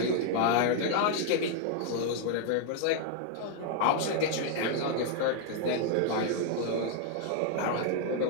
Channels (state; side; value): different; both; correlation 0.00